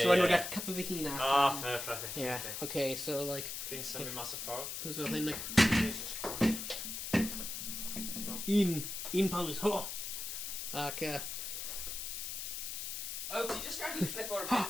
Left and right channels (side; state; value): left; noise; hiss, 5 dB below the sound